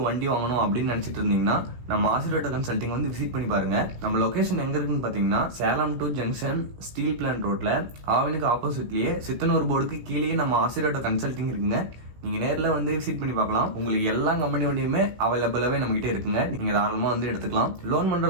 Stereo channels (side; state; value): left; late; 16 ms